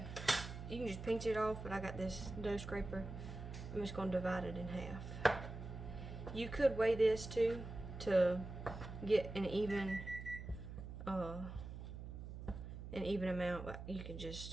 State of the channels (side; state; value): right; noise; hum, 9 dB below the sound